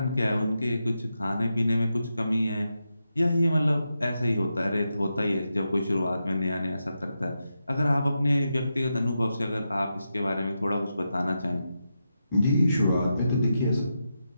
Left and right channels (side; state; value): both; inverted; correlation -0.88